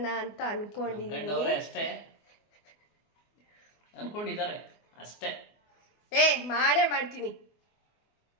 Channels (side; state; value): right; late; 24 ms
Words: ಅಂತ ಅನ್ಕೊಂಡಿದ್ದೀನಿ. ಅಷ್ಟೇ ಅನ್ಕೊಂಡಿದ್ದಾರೆ ಅಷ್ಟೇ. ಮಾಡೇ ಮಾಡ್ತೀನಿ.